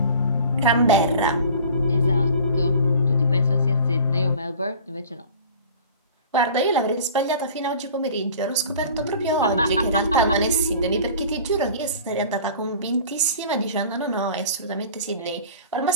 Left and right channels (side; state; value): both; inverted; correlation -0.43